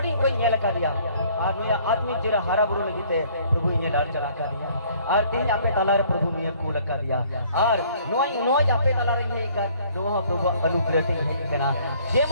कोई नेल का दिया और नुई आत्मिक जिरा हरा बुरु लगीते प्रभु इने डाल चला का दिया और तीन आपे तलारे प्रभु ने कूल का दिया और नोई आपे तलारे ये कर दोहा प्रभु अनुग्रह से है कना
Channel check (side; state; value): both; inverted; correlation -0.58